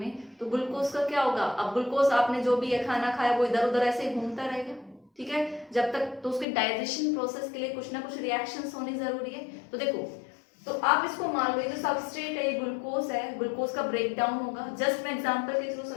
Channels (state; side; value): drops out; right; at 6.5 s